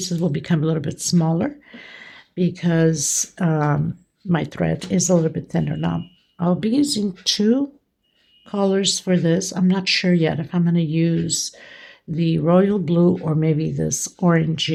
will become a little bit smaller because my thread is a little bit thinner. Now, I'll be using 2 colors for this. I'm not sure yet if I'm going to use the royal blue or maybe this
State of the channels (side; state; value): both; identical; correlation 1.00